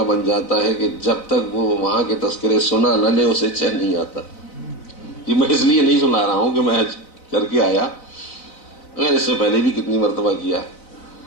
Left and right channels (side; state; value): right; late; 4.0 ms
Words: بن جاتا ہے کہ جب تک وہ وہاں کے تذکرے سنا نہ لے اسے چین نہیں آتا. یہ میں اس لیے نہیں سنا رہا ہوں کہ میں حج کر کے آیا، اگر اس سے پہلے بھی کتنی مرتبہ کیا.